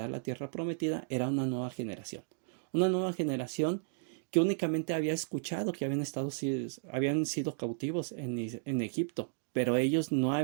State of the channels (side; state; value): left; silent; digital silence